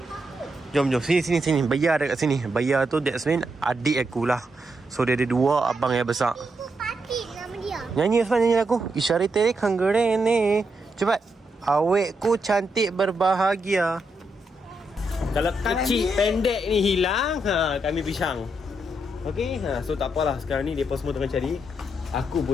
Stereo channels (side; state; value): both; normal; correlation 0.81